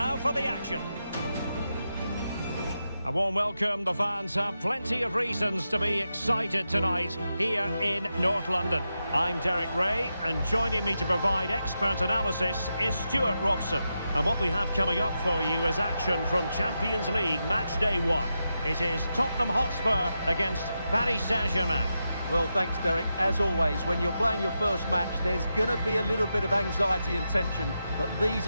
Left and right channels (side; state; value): both; inverted; correlation -0.88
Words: for the action. A warm welcome. The fans have plenty of reasons to be excited tonight here in North London. I'm Derek Ray, and joining me to provide expert analysis is Stuart Robson. And what we have coming up for you is action from Champions League match day 1. It is Tottenham Hotspur against Paris Saint-Germain. Well, thanks, Derek. As always, when you're playing your first match, there's going to be a little bit of anxiety and tension. But these